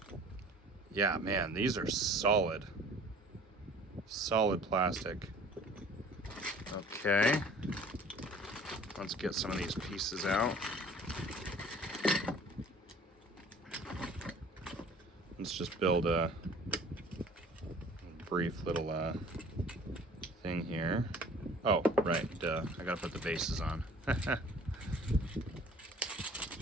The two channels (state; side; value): normal; both; correlation 0.49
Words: Yeah, man, these are solid plastic. Okay, let's get some of these pieces out. Let's just build a brief little thing here. Oh, right, duh. I gotta put the bases on.